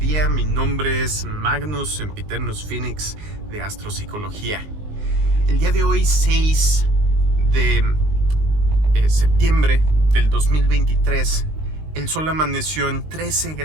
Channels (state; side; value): late; left; 19 ms